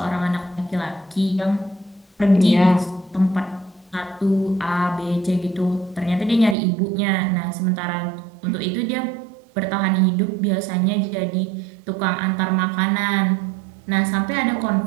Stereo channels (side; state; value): left; drops out; at 6.6 s